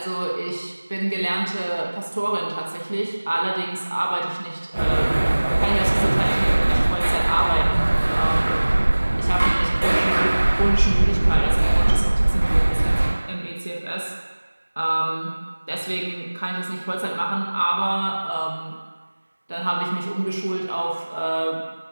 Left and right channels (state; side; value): inverted; both; correlation -1.00